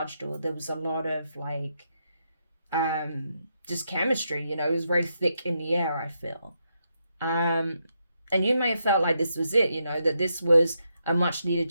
or there was a lot of like just chemistry, you know. It was very thick in the air, I feel. And you may have felt like this was it, you know, that this was a much needed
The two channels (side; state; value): both; inverted; correlation -0.81